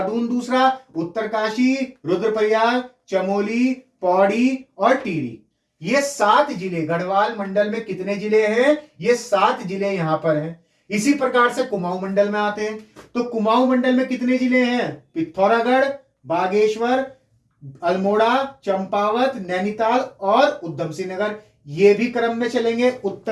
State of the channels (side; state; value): both; identical; correlation 1.00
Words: दूसरा, उत्तरकाशी, रुद्रप्रयाग, चमोली, पौड़ी और टिहरी, ये 7 जिले गढ़वाल मंडल में कितने जिले हैं, ये 7 जिले यहां पर हैं। इसी प्रकार से कुमाऊं मंडल में आते हैं, तो कुमाऊं मंडल में कितने जिले हैं, पिथौरागढ़, बागेश्वर, अल्मोड़ा, चंपावत, नैनीताल और उधम सिंह नगर। ये भी क्रम में चलेंगे